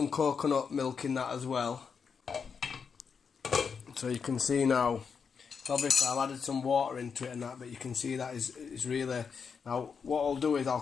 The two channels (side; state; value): right; quieter; 6.1 dB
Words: coconut milk in that as well. So you can see now, obviously I've added some water into it and that, but you can see that is really, now what I'll do is I'll